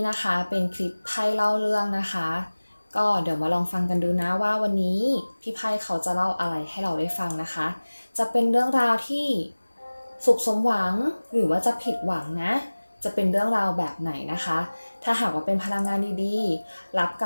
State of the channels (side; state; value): both; inverted; correlation -1.00